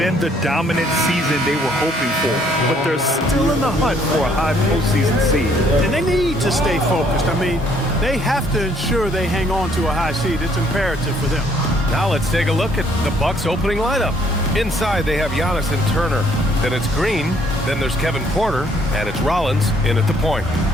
the dominant season they were hoping for, but they're still in the hunt for a high postseason seed. And they need to stay focused. I mean, they have to ensure they hang on to a high seed. It's imperative for them. Now let's take a look at the Bucks' opening lineup. Inside, they have Giannis and Turner. Then it's Green. Then there's Kevin Porter. And it's Rollins in at the point.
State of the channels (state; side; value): normal; both; correlation 0.64